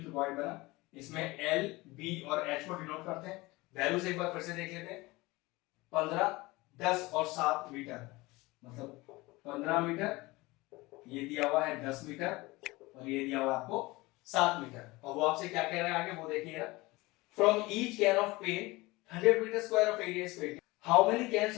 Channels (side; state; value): right; quieter; 21.7 dB